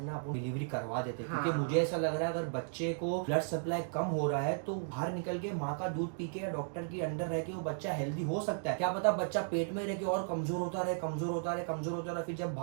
ना अपन डिलीवरी करवा देते, क्योंकि मुझे ऐसा लग रहा है अगर बच्चे को ब्लड सप्लाई कम हो रहा है तो बाहर निकल के माँ का दूध पी के या डॉक्टर के अंडर रह के वो बच्चा हेल्दी हो सकता है। क्या पता बच्चा पेट में रह के और कमजोर होता रहे, फिर जब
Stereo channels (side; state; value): left; silent; digital silence